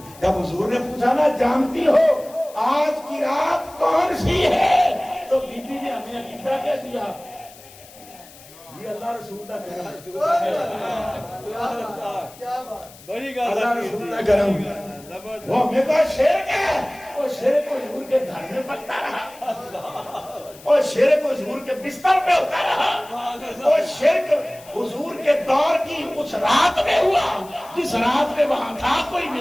جب حضور نے پوچھا نا جانتی ہو آج کی رات کون سی ہے تو بی بی نے ہمیں عقیدہ کہہ دیا یہ اللہ رسول کا کرم. بڑی اللہ رسول کا کرم. وہ ہمیں کا شرک ہے وہ شرک حضور کے گھر میں پکتا رہا اور شرک حضور کے بستر پہ ہوتا رہا اور شرک حضور کے دور کی اس رات میں ہوا جس رات میں وہاں تھا کوئی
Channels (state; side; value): noise; left; hiss, 21 dB below the sound